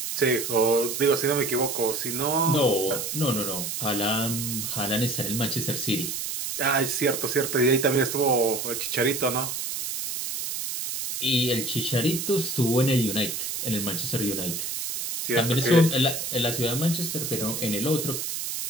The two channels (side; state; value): right; noise; hiss, 4 dB below the sound